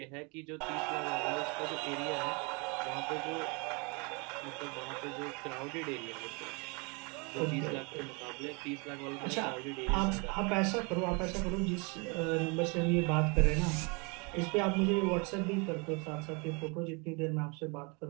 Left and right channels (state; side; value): quieter; left; 31.2 dB